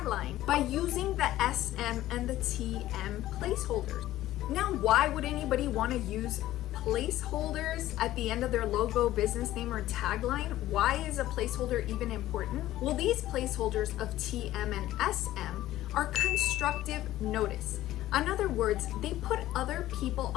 by using the SM and the TM placeholders. Now, why would anybody want to use placeholders at the end of their logo, business name, or tagline? Why is a placeholder even important? Well, these placeholders of TM and SM are constructive notice. In other words, they put other people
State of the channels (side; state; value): right; quieter; 14.7 dB